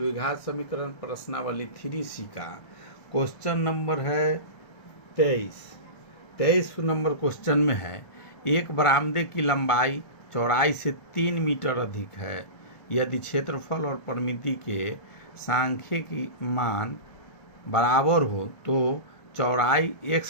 समीकरण प्रश्नावली 3C का क्वेश्चन नंबर है 23 नंबर क्वेश्चन में है, एक बरामदे की लंबाई चौड़ाई से 3 मीटर अधिक है। यदि क्षेत्रफल और परिमिति के सांख्यिकी मान बराबर हो तो चौड़ाई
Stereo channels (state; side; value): late; right; 1.5 ms